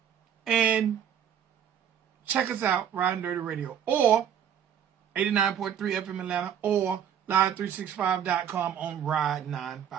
and check us out, Riding Dirty Radio, or 89.3 FM Atlanta, or live365.com on Ride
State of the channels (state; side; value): quieter; left; 9.1 dB